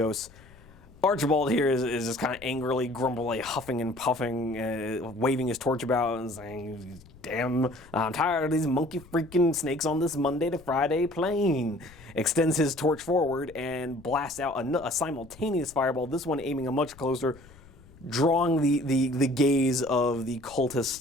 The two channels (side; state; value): left; noise; rumble, 23 dB below the sound